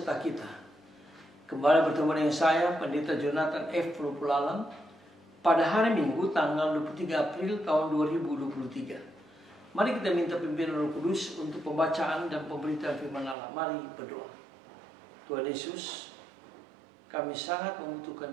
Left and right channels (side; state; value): left; drops out; at 13.4 s